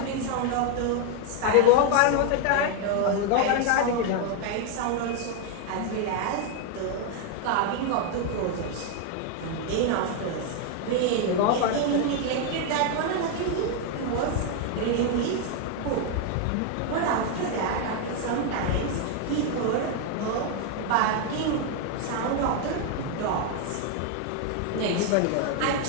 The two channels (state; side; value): different; both; correlation 0.01